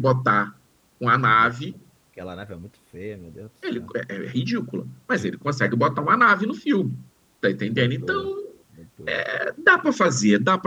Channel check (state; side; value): identical; both; correlation 1.00